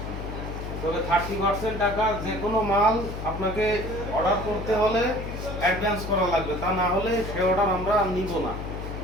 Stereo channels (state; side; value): noise; left; hum, 7 dB below the sound